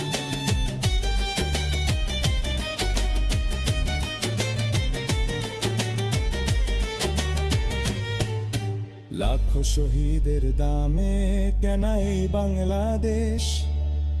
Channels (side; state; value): both; identical; correlation 1.00